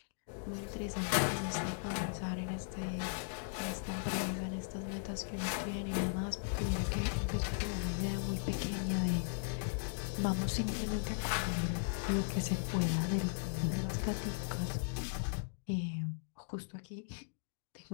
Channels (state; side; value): silent; right; digital silence